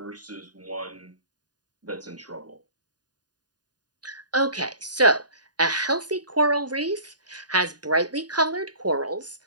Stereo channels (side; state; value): left; late; 0.69 ms